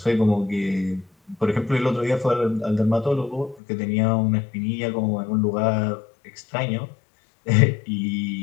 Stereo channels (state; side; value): drops out; right; at 3.6 s